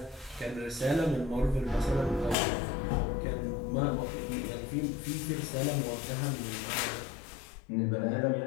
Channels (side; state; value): right; drops out; at 2.4 s